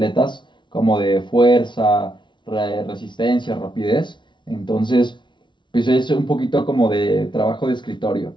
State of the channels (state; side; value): late; right; 0.23 ms